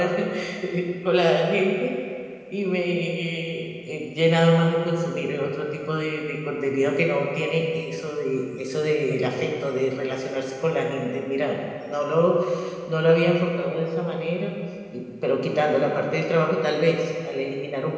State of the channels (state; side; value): identical; both; correlation 1.00